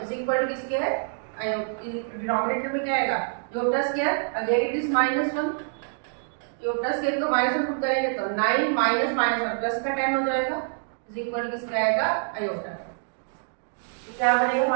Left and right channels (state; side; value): silent; left; digital silence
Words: is equal to किसके है डिनोमिनेटर में क्या आएगा iota square again it is minus 1। Iota square को माइनस 1 पुट करेंगे तो 9 माइनस माइनस 1 प्लस का 10 हो जाएगा इज इक्वल टू किसका आएगा आयोटा। तो क्या बनेगा